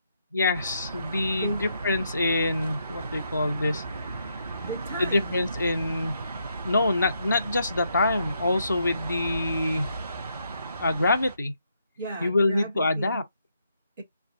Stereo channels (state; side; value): inverted; both; correlation -0.77